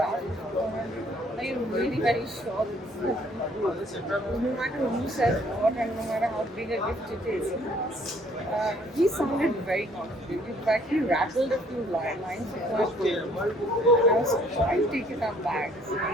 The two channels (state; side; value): normal; both; correlation 0.61